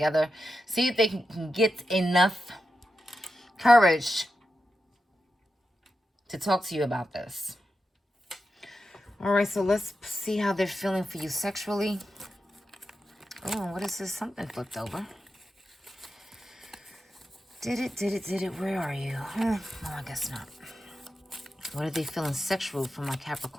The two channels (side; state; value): both; normal; correlation 0.89